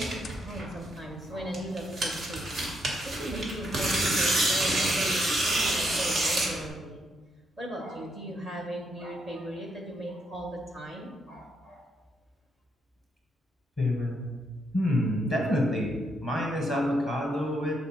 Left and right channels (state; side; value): normal; both; correlation 0.77